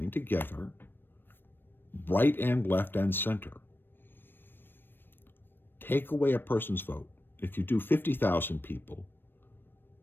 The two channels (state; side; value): late; right; 0.097 ms